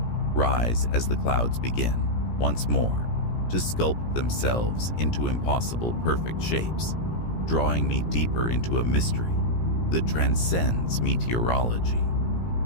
rise as the clouds begin, once more, to sculpt themselves into impossible perfect shapes, drawing me deeper into a mystery that transcends meteorology,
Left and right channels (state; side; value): late; right; 17 ms